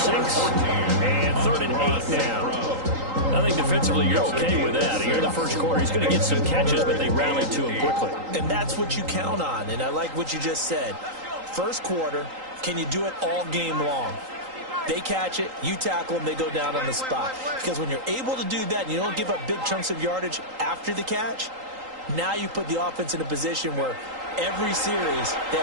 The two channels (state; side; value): late; left; 3.8 ms